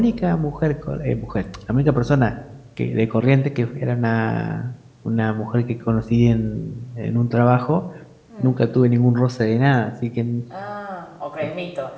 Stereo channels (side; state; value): both; identical; correlation 1.00